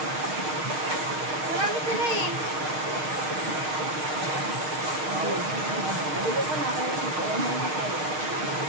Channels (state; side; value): late; left; 6.4 ms